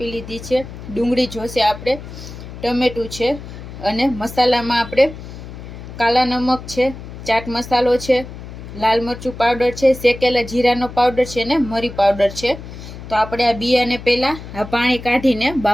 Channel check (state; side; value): noise; left; hum, 13 dB below the sound